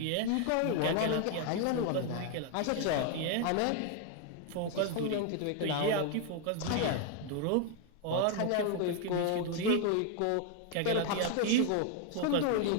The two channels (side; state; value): both; different; correlation 0.00